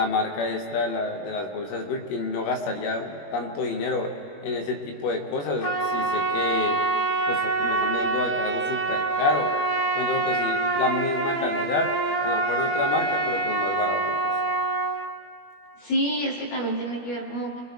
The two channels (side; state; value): right; late; 21 ms